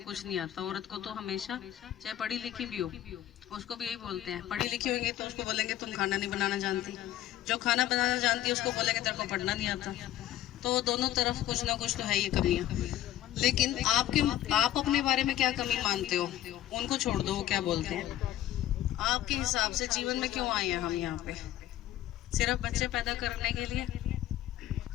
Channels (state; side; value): quieter; right; 13.1 dB